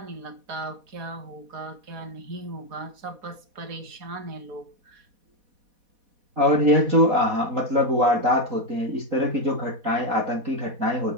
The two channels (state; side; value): late; left; 4.1 ms